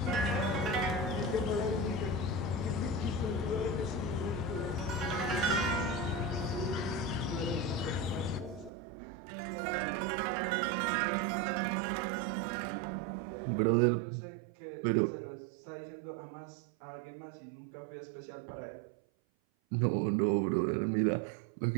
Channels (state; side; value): drops out; left; at 8.7 s